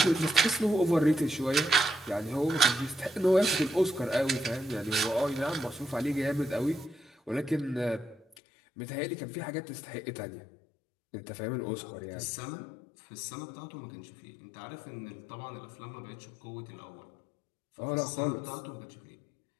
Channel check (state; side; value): drops out; right; at 8.2 s